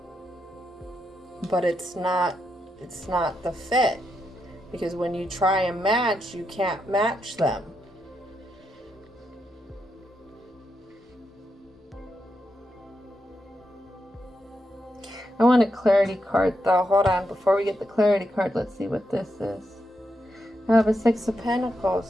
But it's not the fit. Because when you try and match, you can't match them. I want a clarity card though. Hold on. Before we get the clarity card, let's see what this is. I have a 6 of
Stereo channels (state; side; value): normal; both; correlation 0.83